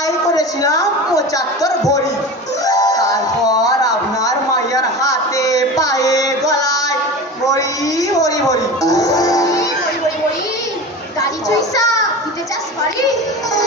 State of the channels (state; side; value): normal; both; correlation 0.31